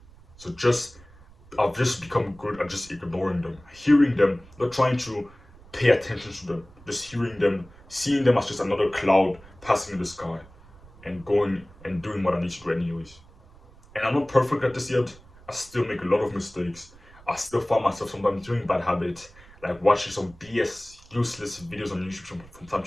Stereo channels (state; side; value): noise; right; rumble, 24 dB below the sound